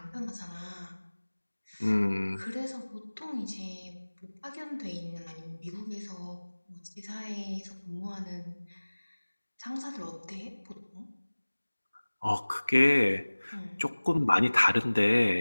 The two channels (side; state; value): both; inverted; correlation -1.00